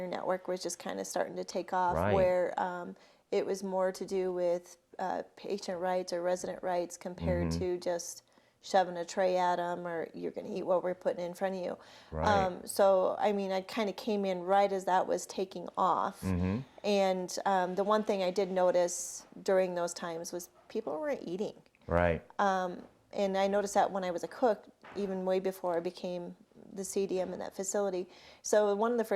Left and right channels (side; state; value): both; identical; correlation 1.00